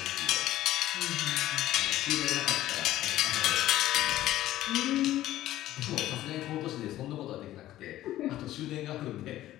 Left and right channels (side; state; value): right; quieter; 14.3 dB